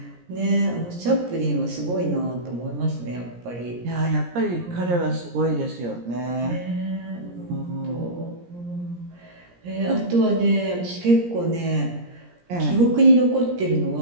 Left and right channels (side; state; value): left; late; 17 ms